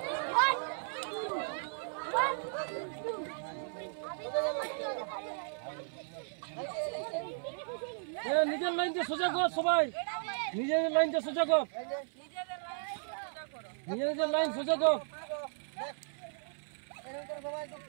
নিজের লাইনটা সোজা কর সবাই নিজের লাইনটা সোজা কর নিজের লাইন সোজা কর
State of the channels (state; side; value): silent; left; 54 dB below the other